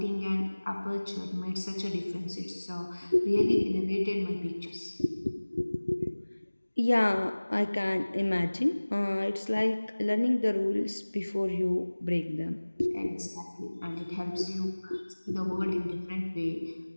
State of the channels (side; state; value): both; inverted; correlation -1.00